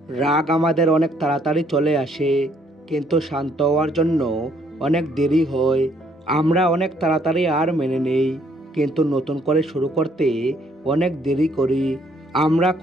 রাগ আমাদের অনেক তাড়াতাড়ি চলে আসে, কিন্তু শান্ত হওয়ার জন্য অনেক দেরি হয়। আমরা অনেক তাড়াতাড়ি আর মেনে নেই, কিন্তু নতুন করে শুরু করতে অনেক দেরি করি। আমরা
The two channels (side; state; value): both; normal; correlation 0.67